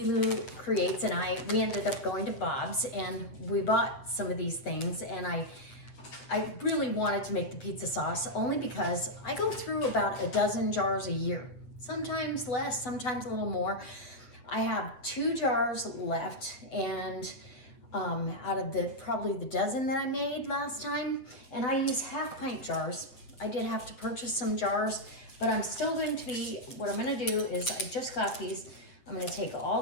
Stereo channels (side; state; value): right; late; 8.1 ms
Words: Creates and we ended up going to Bob's and we bought some of these things, and I really wanted to make the pizza sauce only because I go through about a dozen jars a year, sometimes less, sometimes a little more. I have 2 jars left, and out of probably the dozen that I made last time, and I use half-pint jars. I did have to purchase some jars, but I'm still going to be, what I'm going to do is I just got these. I'm going to take all